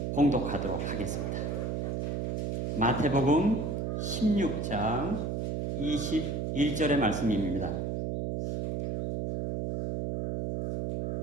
봉독하도록 하겠습니다. 마태복음 16장 21절의 말씀입니다.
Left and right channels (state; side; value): noise; right; hum, 1 dB below the sound